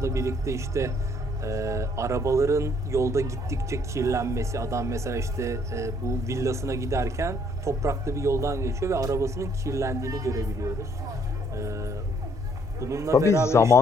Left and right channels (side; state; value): both; normal; correlation 0.66